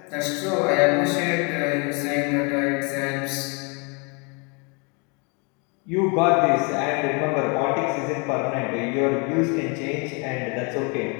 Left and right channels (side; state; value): right; quieter; 32.7 dB